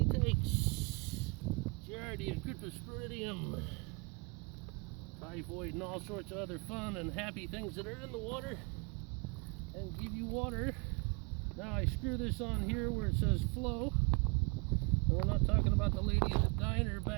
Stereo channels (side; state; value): left; quieter; 30.7 dB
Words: takes giardia, cryptosporidium, typhoid, and all sorts of other fun and happy things that are in the water and give you water. Now I screw this on here where it says flow. And we're not talking about the lady at the diner